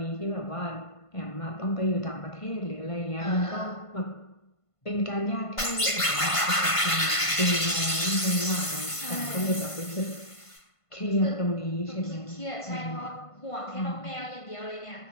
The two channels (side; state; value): right; late; 1.5 ms